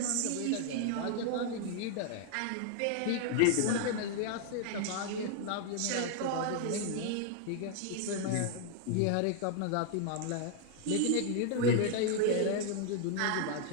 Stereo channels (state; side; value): different; both; correlation 0.00